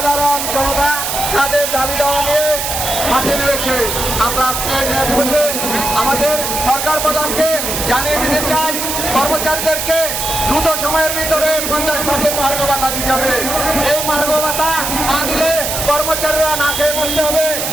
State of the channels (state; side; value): noise; right; hiss, 2 dB below the sound